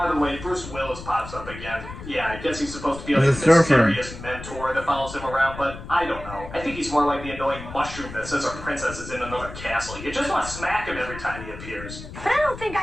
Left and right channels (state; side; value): noise; left; rumble, 12 dB below the sound